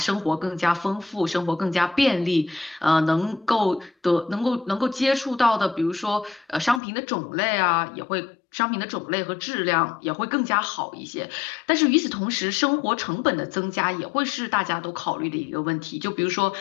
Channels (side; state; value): right; drops out; at 6.8 s